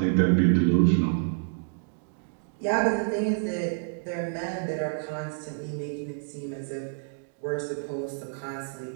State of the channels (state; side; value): silent; left; digital silence